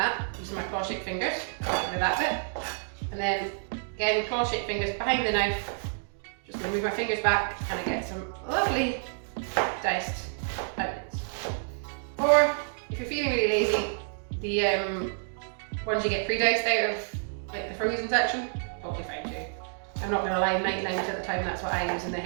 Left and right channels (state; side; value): silent; left; digital silence